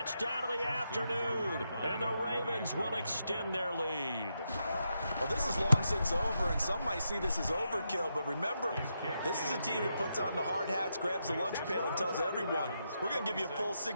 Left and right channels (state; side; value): inverted; both; correlation -0.83